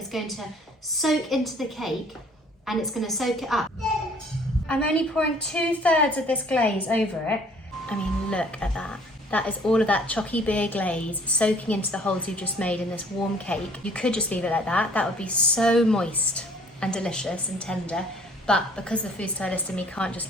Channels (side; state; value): both; normal; correlation 0.55